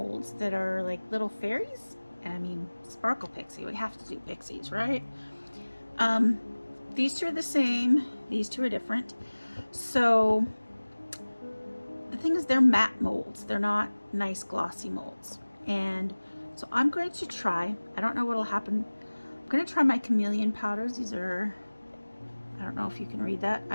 that are like little fairies. I mean, Sparkle Pixie, we have to do pixies, right? These two are the same, these two are different. So the thing is, they're matte molds, they're not nice glossy molds. And so I'm going to try, I don't know what'll happen. I'm going to try my Chameleon powders. These are, I don't know if you can read that.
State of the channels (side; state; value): both; inverted; correlation -1.00